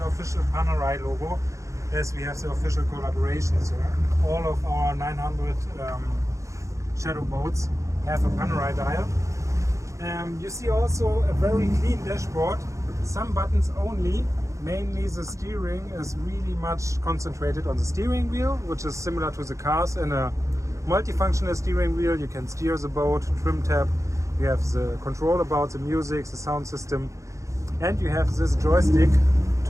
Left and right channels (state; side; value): late; left; 0.15 ms